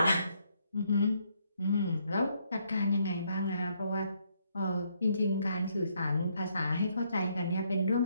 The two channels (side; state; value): both; inverted; correlation -0.73